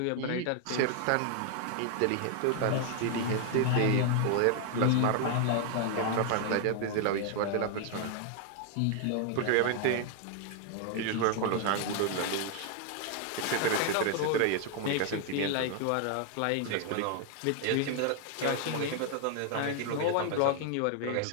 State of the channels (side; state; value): both; different; correlation 0.00